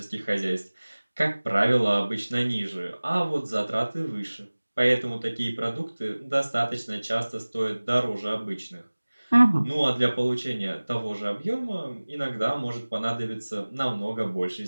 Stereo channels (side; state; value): both; inverted; correlation -1.00